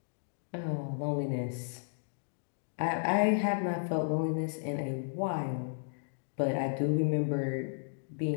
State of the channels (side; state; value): right; silent; digital silence